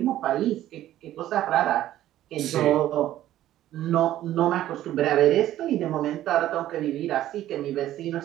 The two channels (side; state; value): left; quieter; 13.3 dB